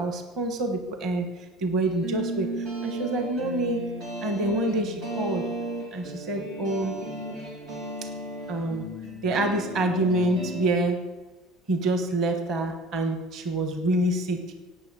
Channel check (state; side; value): normal; both; correlation 0.39